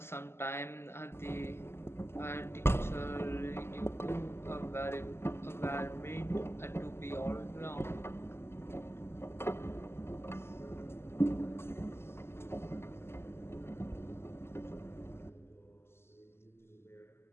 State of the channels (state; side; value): late; right; 0.12 ms